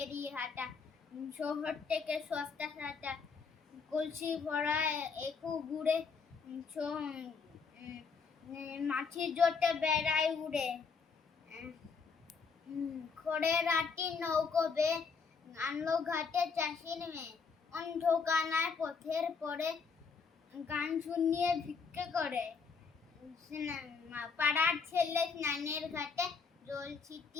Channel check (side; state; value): right; quieter; 5.4 dB